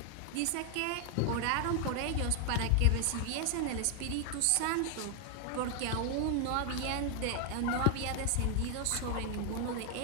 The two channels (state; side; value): different; both; correlation 0.00